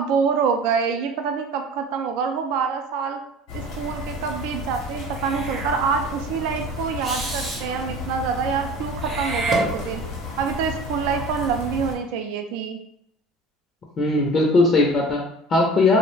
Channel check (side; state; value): both; normal; correlation 0.41